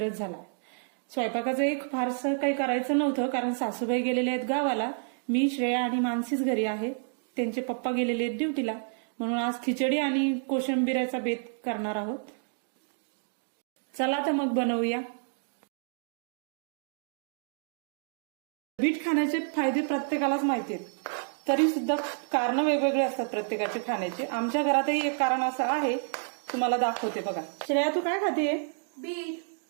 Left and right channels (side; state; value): left; silent; digital silence